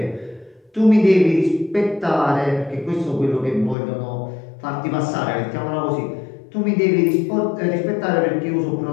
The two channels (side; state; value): right; drops out; at 3.8 s